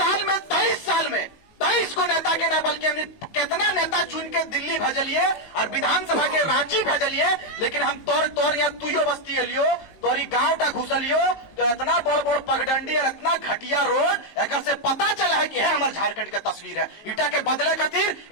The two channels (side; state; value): right; late; 19 ms